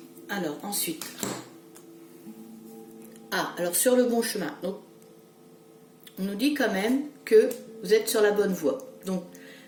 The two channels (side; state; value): both; identical; correlation 1.00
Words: Alors ensuite, alors sur le bon chemin. Donc on nous dit quand même que vous êtes sur la bonne voie. Donc